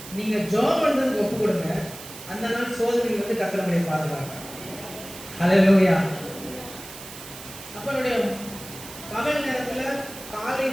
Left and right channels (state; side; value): noise; right; hiss, 14 dB below the sound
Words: நீங்கள் ஜாப் பண்ணுறதுக்கு ஒப்பு கொடுங்க. அந்த நாள் சோதனைகள் வந்து கத்தரமுடைய பாதுகாங்க. அல்லேலூயா. அப்போ என்னுடைய பகல் நேரத்தில், காலை